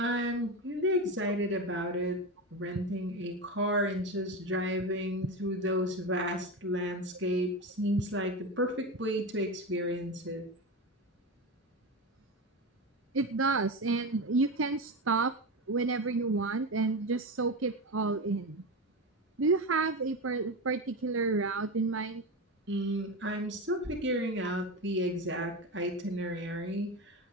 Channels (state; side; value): normal; both; correlation 0.20